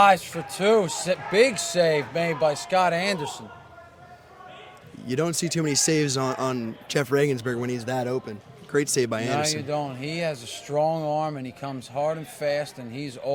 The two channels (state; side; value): identical; both; correlation 1.00